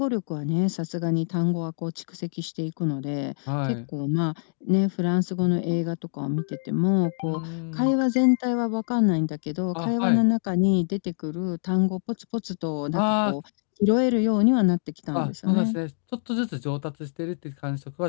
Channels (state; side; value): silent; right; digital silence